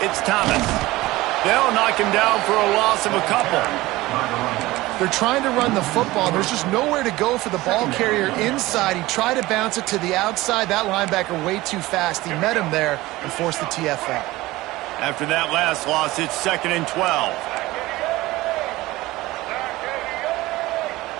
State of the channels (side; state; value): left; quieter; 18.8 dB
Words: it's Thomas. They'll knock him down for a loss of a couple. They're trying to run the football. There's just nowhere to go for the ball carrier inside. He tried to bounce it to the outside. That linebacker way too fast. He met him there and forced the TFL. After that last loss, it's 2nd and 12.